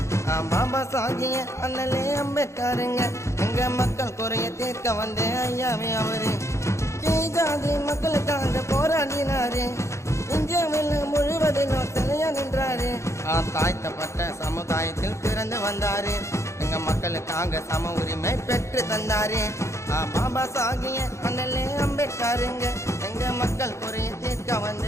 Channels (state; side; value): late; right; 0.14 ms